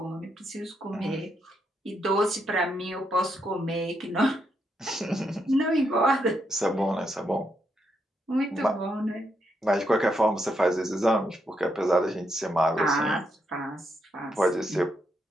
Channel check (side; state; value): both; normal; correlation 0.79